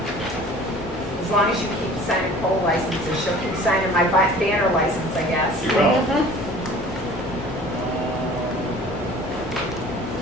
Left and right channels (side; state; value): both; normal; correlation 0.47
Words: as long as you keep signing poll licenses, she'll keep signing my banner license, I guess. You will.